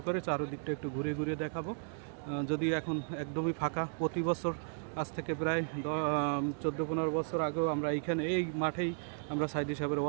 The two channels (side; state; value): left; silent; digital silence